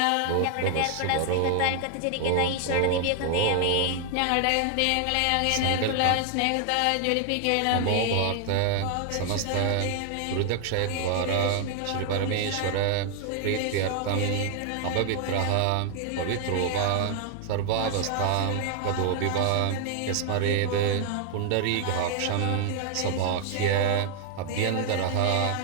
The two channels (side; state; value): both; different; correlation 0.00